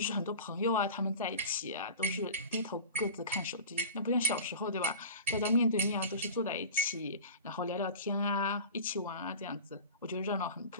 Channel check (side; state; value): both; inverted; correlation -0.36